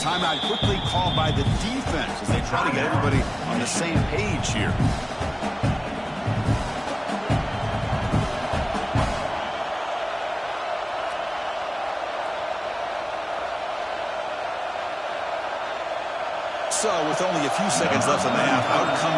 quickly called by the defense as they try to get everybody on the same page here. So, with only a few seconds left in the half, out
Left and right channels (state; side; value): identical; both; correlation 1.00